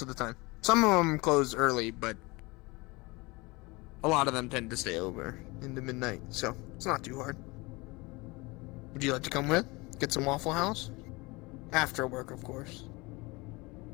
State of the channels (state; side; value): quieter; right; 24.5 dB